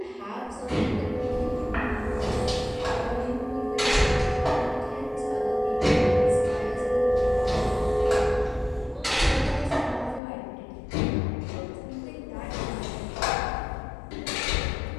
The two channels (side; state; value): right; drops out; at 10.2 s